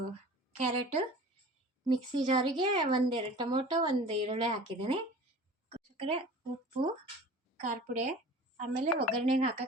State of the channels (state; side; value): normal; both; correlation 0.41